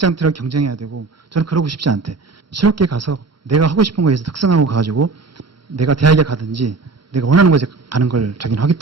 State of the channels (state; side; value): quieter; left; 4.0 dB